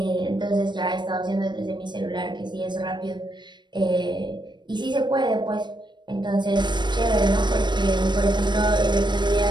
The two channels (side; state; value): left; late; 0.22 ms